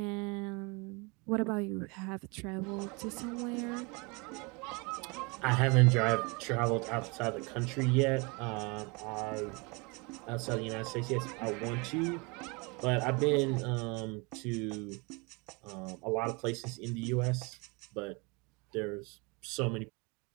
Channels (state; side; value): quieter; left; 29.1 dB